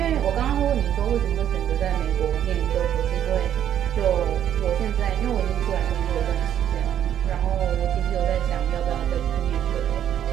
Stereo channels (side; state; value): left; quieter; 10.1 dB